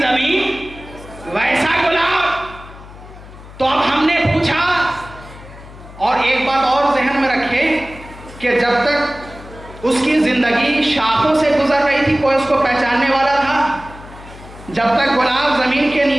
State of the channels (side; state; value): left; noise; hum, 18 dB below the sound